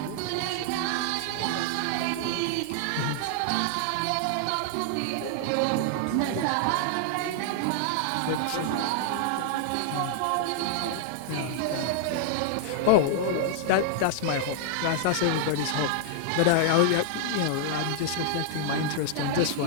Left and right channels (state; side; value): different; both; correlation -0.01